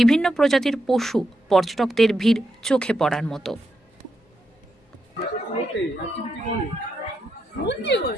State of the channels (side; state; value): both; normal; correlation 0.84